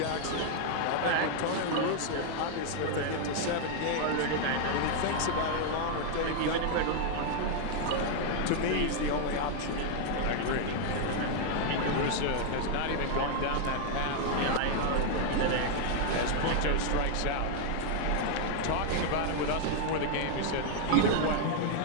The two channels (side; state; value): both; different; correlation 0.00